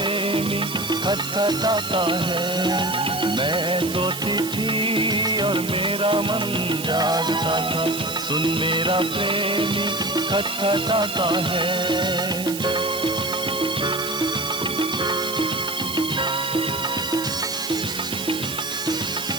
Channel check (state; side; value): noise; right; hiss, 9 dB below the sound